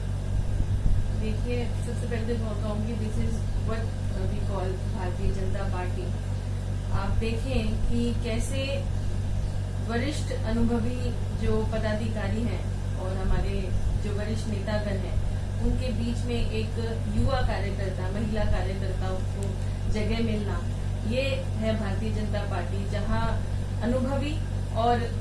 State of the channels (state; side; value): identical; both; correlation 1.00